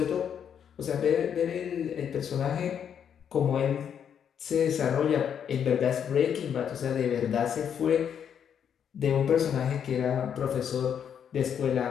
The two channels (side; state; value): right; quieter; 8.3 dB